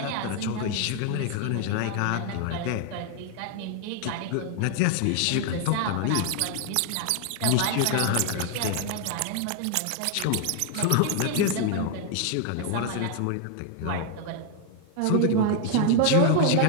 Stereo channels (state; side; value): different; both; correlation 0.00